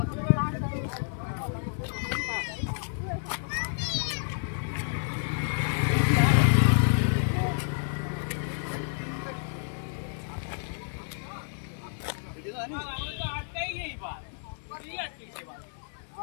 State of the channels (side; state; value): right; silent; digital silence